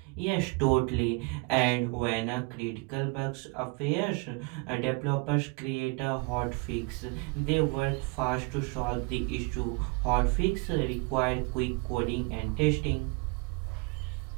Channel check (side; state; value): left; quieter; 28.6 dB